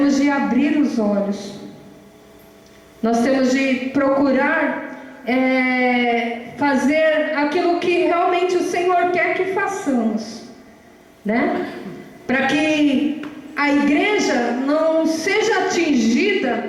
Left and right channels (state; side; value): identical; both; correlation 1.00